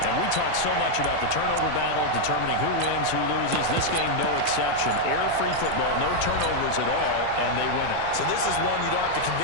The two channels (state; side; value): different; both; correlation 0.00